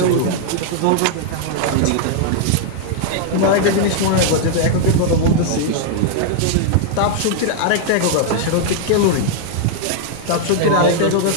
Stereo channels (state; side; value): different; both; correlation -0.01